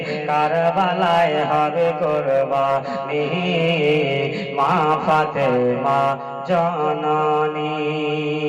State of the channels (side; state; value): both; identical; correlation 1.00